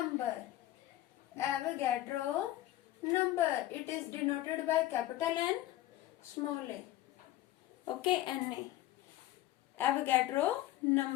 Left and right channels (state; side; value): quieter; right; 14.8 dB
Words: Avogadro number. It is denoted by capital N, small a. Okay, Na. Avogadro